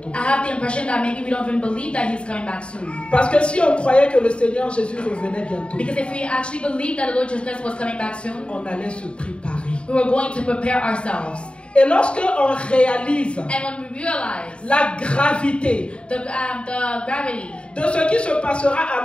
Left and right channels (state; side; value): late; right; 0.056 ms